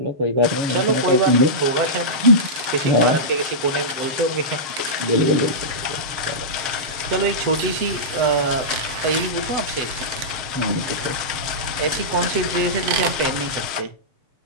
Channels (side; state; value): left; late; 6.5 ms